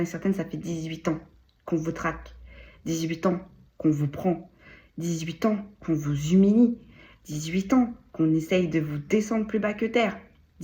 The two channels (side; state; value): both; identical; correlation 1.00